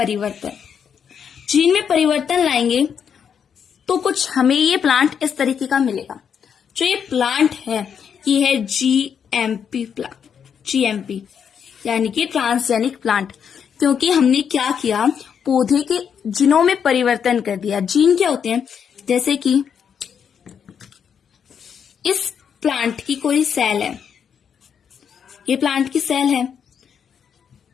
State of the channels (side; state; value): right; quieter; 7.5 dB